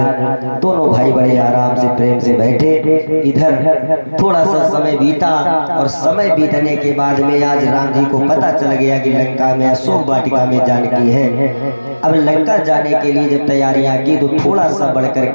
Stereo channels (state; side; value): inverted; both; correlation -1.00